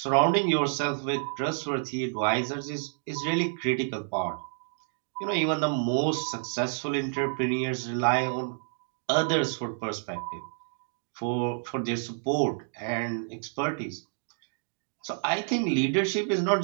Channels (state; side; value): silent; left; digital silence